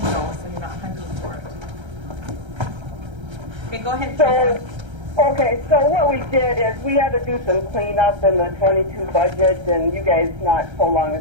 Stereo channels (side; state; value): left; late; 1.3 ms